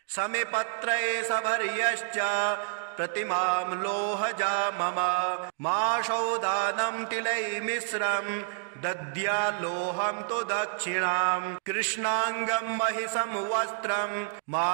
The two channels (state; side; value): silent; left; digital silence